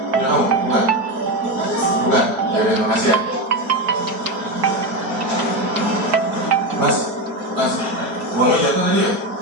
Ya kamu? Bukan? Bukan? Ya udah, makasih ya. Mas, uangnya jatuh tadi ya?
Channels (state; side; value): late; left; 4.6 ms